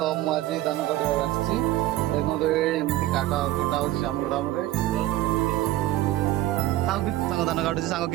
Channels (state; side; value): quieter; left; 15.5 dB